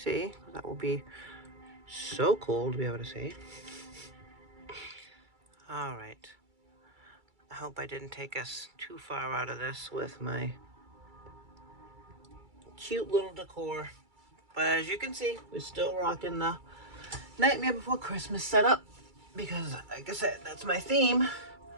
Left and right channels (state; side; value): late; left; 2.3 ms